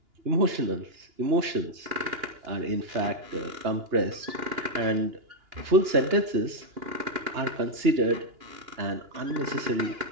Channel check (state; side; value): late; left; 2.9 ms